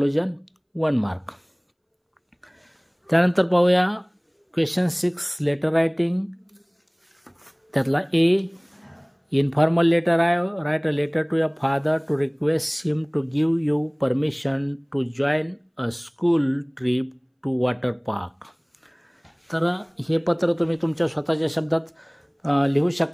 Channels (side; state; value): both; identical; correlation 1.00